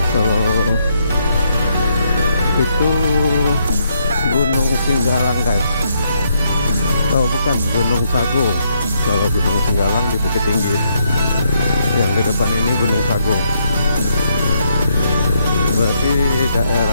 Kalau itu Gunung Singgalang guys. Oh bukan, Gunung Sago. Kalau Gunung Singgalang di Bukit Tinggi. Yang di depan ini Gunung Sago. Berarti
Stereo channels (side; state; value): both; inverted; correlation -0.75